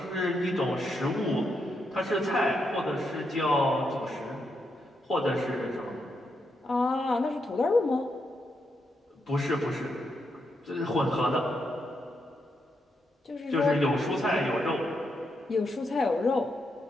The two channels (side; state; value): both; normal; correlation 0.81